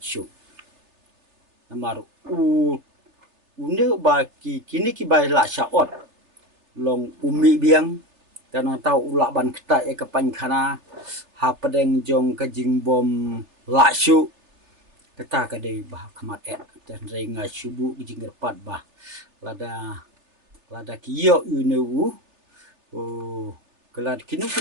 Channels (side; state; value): left; late; 3.3 ms